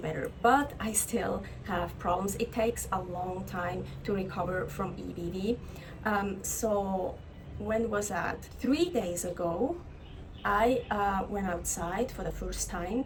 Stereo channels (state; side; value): identical; both; correlation 1.00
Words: but I still have problems. It takes a long time to recover from EBV. So when was that? 3 days ago, I went outside for the first